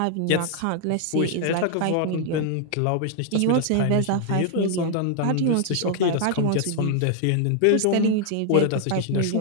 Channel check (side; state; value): both; different; correlation 0.00